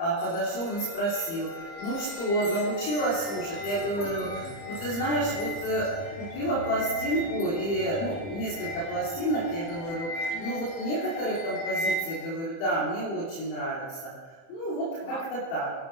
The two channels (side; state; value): right; late; 30 ms